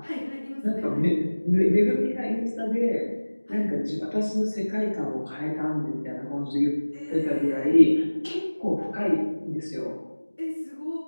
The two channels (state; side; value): inverted; both; correlation -1.00